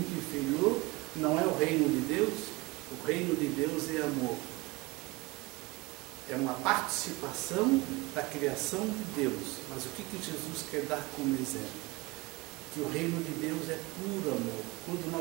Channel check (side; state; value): left; quieter; 23.6 dB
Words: inferior, não é o reino de Deus. O reino de Deus é amor. É uma participação da criação de Deus. Mas o que Jesus quer dar como exemplo? Que o reino de Deus é puro amor. Quando